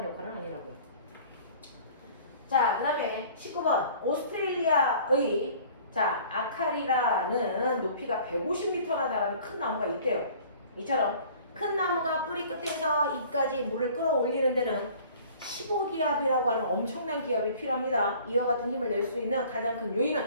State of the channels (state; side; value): inverted; both; correlation -0.49